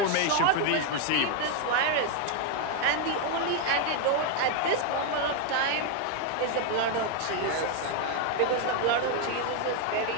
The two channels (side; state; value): both; different; correlation 0.01